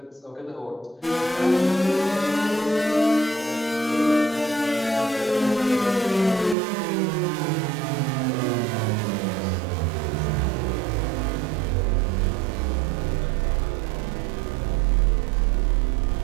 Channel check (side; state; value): left; drops out; at 6.6 s